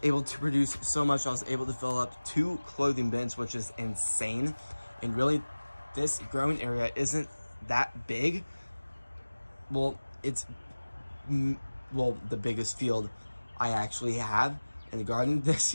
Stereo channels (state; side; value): inverted; both; correlation -1.00